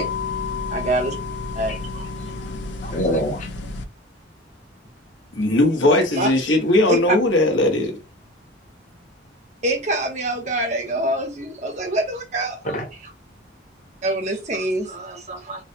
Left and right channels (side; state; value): both; normal; correlation 0.32